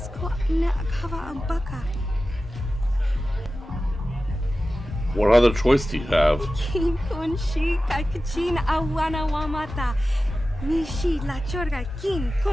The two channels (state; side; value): normal; both; correlation 0.94